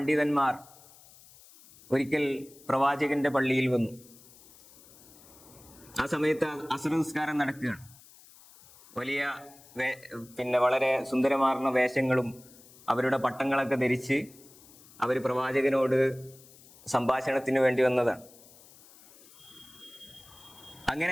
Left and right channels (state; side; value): noise; left; hiss, 23 dB below the sound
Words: ഒരിക്കൽ പ്രവാചകന്റെ പള്ളിയിൽ വന്നു. ആ സമയത്ത് അസ്ർ നിസ്കാരം നടക്കുകയാണ്. വലിയ വളരെ സുന്ദരമാർന്ന വേഷങ്ങളും അവരുടെ പട്ടങ്ങളൊക്കെ ധരിച്ച് അവർ പ്രവാചകനോട് സംഭാഷണത്തിന് വേണ്ടി വന്നതാണ്.